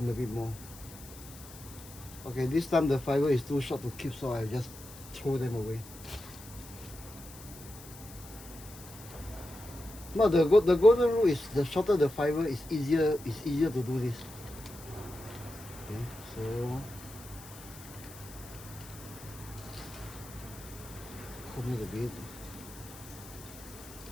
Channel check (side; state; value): left; noise; hiss, 17 dB below the sound